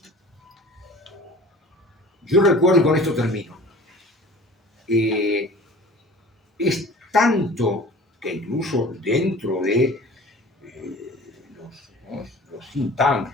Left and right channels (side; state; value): both; normal; correlation 0.43